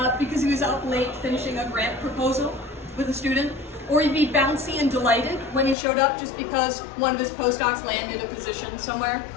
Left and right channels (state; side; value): drops out; right; at 5.8 s